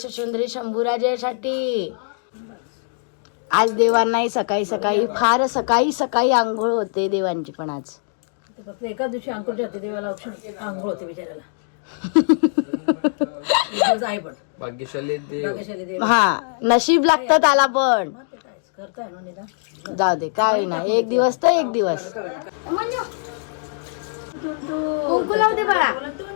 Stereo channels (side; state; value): right; silent; digital silence